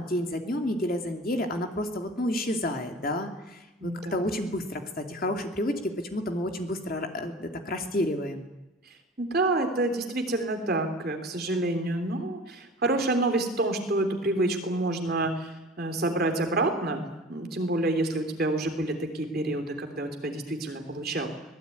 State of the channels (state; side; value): normal; both; correlation 0.41